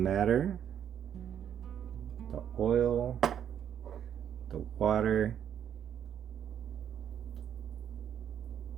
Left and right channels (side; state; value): left; quieter; 9.3 dB